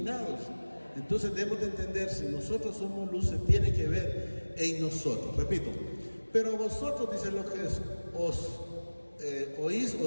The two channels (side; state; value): both; inverted; correlation -1.00